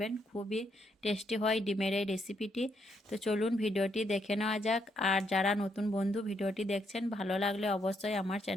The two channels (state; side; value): normal; both; correlation 0.76